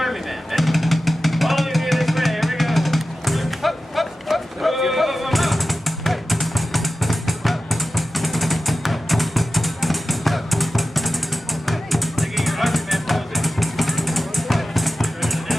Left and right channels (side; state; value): both; normal; correlation 0.93